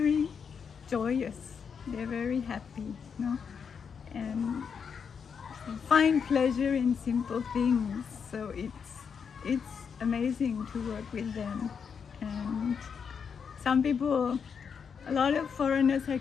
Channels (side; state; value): right; quieter; 6.5 dB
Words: joyous. They're very happy, and find pleasure in simple things. So it's amazing to work with them. And some people, a lot of foreigners